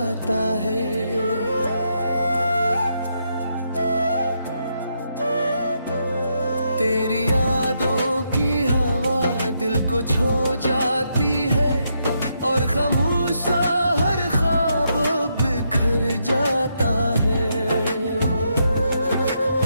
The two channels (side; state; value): both; inverted; correlation -0.79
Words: है। तेरी यादों की हवा दिल को छू जाती है, और खामोश सा हर ख्वाब बिखर जाता है।